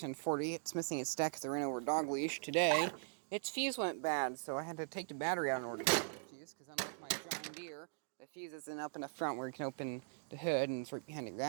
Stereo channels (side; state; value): left; silent; digital silence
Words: 1040. It's missing its deck because I ran over a dog leash today. Its fuse went bad, so I had to take the battery out in order to get the fuse, because unlike my John Deere, the fuse isn't up in the front where you can open the hood and it's right behind the